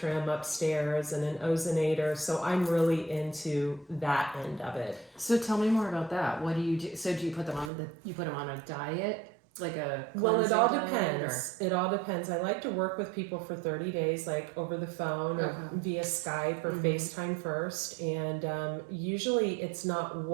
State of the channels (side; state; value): left; drops out; at 7.7 s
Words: upstairs and an ozonator. So I'm really into that end of it. So tell me more about that. What do you do? So do you put them on a diet? Like a Well, it all diet, depends. It all depends. I like to work with people for 30 days, like over the phone or via Skype or FaceTime first. And usually it's not